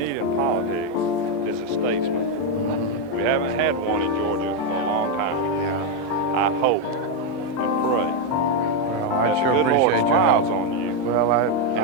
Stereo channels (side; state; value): both; normal; correlation 0.02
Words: in politics is a statesman. We haven't had one in Georgia for a long time. Yeah. I hope and pray Well, I that sure the good Lord appreciate your smiles help. on you Well,